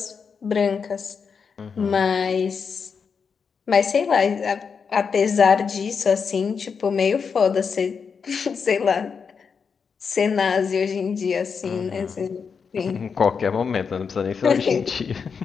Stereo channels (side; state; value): right; quieter; 5.9 dB